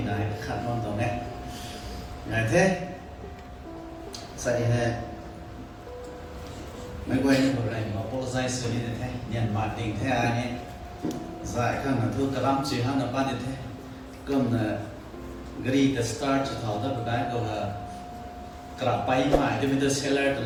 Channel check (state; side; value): identical; both; correlation 1.00